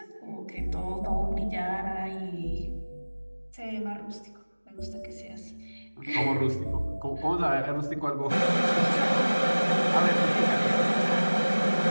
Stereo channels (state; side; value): inverted; both; correlation -1.00